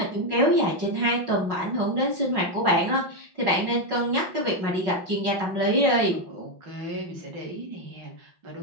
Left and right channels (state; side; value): late; left; 5.4 ms